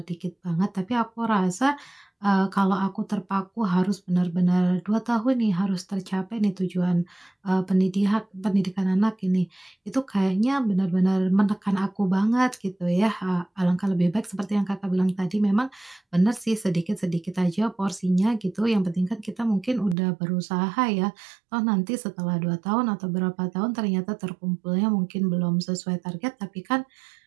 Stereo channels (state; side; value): drops out; left; at 20.0 s